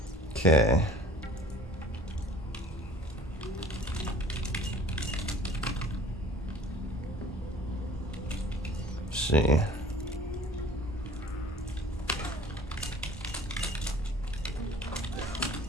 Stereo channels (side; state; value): both; normal; correlation 0.48